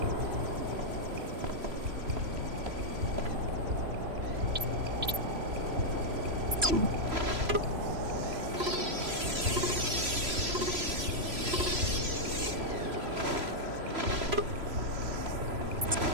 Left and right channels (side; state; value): left; late; 3.0 ms